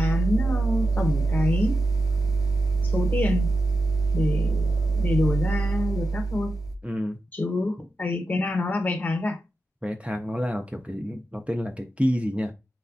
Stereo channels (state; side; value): normal; both; correlation 0.90